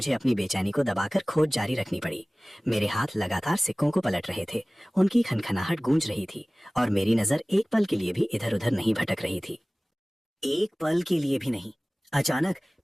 अपनी बेचैनी को दबाकर खोज जारी रखनी पड़ी। मेरे हाथ लगातार सिक्कों को पलट रहे थे। उनकी खनखनाहट गूंज रही थी और मेरी नजर एक पल के लिए भी इधर उधर नहीं भटक रही थी। एक पल के लिए भी नहीं। अचानक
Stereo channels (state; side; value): normal; both; correlation 0.98